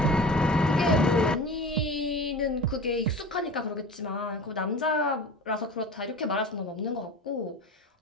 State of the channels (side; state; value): both; normal; correlation 0.35